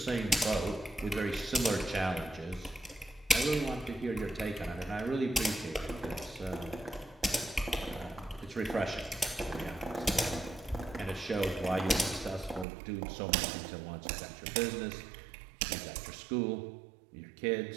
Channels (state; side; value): drops out; left; at 12.7 s